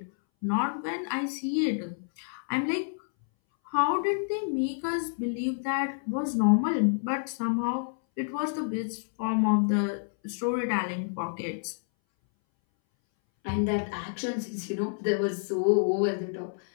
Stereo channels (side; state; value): right; silent; 59 dB below the other